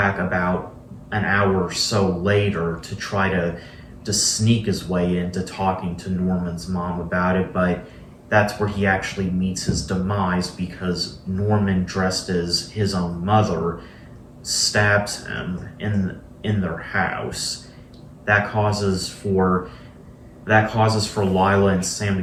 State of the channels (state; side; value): identical; both; correlation 1.00